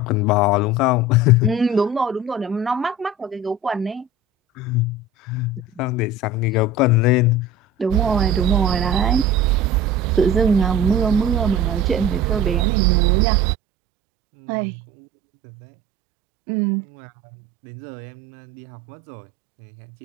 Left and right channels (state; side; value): drops out; left; at 12.7 s